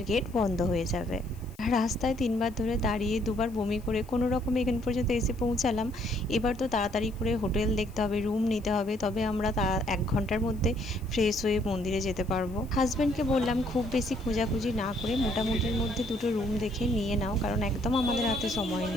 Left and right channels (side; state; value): left; noise; hiss, 26 dB below the sound